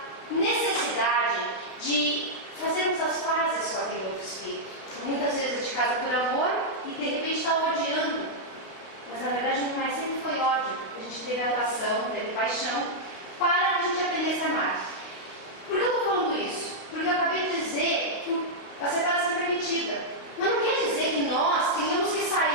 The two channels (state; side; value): late; right; 32 ms